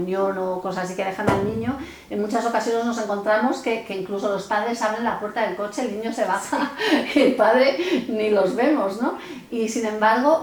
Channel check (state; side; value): identical; both; correlation 1.00